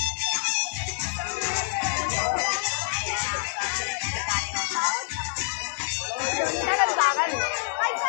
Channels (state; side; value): silent; right; digital silence